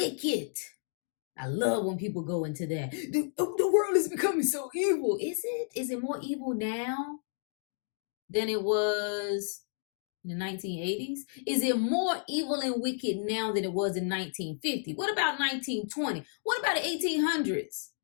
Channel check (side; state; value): right; silent; digital silence